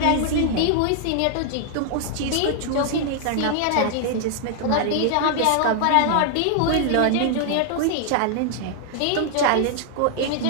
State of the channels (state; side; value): different; both; correlation 0.00